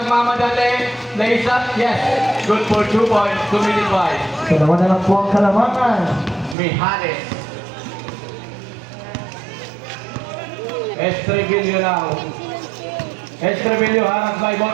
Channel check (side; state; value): left; drops out; at 6.6 s